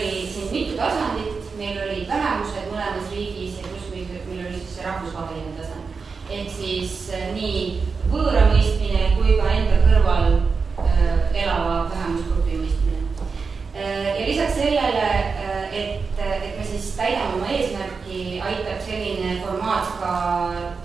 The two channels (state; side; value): quieter; left; 4.9 dB